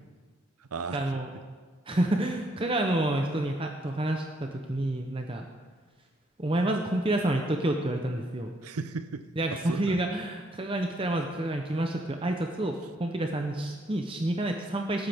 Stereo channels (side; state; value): both; normal; correlation 0.71